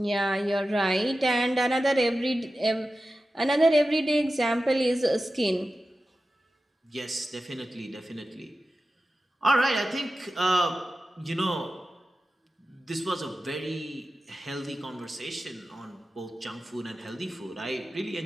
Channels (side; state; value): both; normal; correlation 0.93